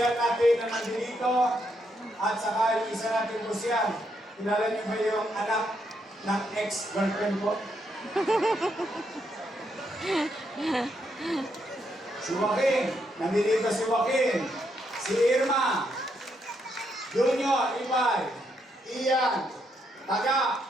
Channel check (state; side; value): normal; both; correlation 0.77